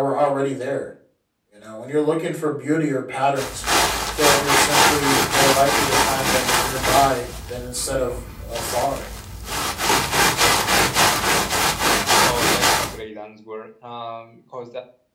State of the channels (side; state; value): both; identical; correlation 1.00